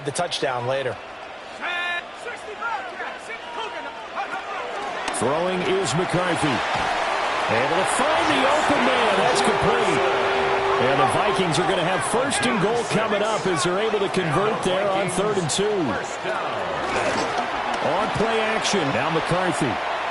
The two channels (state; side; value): identical; both; correlation 1.00